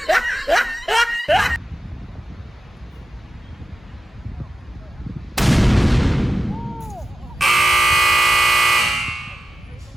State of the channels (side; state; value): both; normal; correlation 0.90